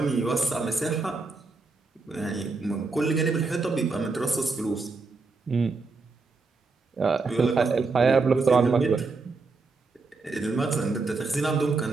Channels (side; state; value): left; quieter; 4.0 dB